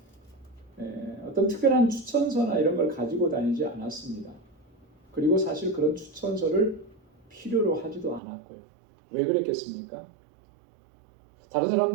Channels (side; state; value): left; drops out; at 8.2 s